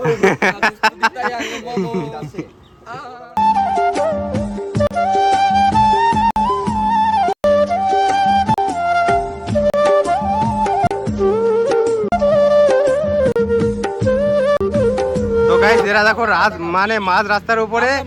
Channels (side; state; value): both; identical; correlation 1.00